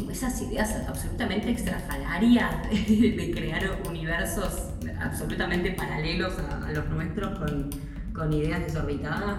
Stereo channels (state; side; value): identical; both; correlation 1.00